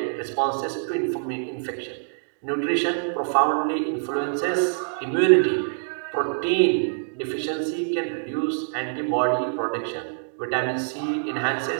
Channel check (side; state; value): left; silent; digital silence